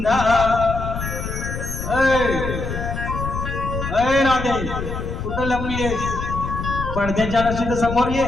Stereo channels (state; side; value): noise; left; rumble, 5 dB below the sound